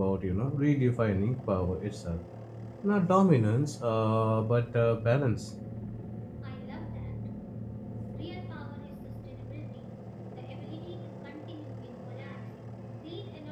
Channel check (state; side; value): identical; both; correlation 1.00